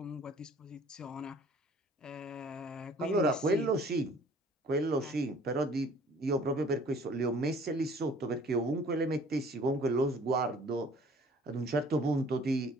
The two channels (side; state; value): both; normal; correlation 0.53